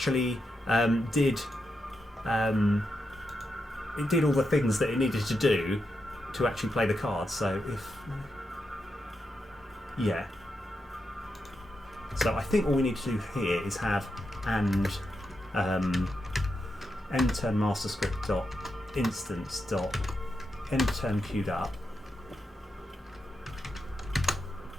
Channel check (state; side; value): normal; both; correlation 0.86